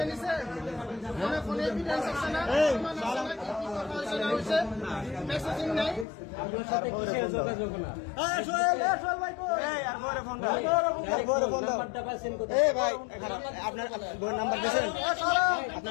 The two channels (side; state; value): right; drops out; at 6.1 s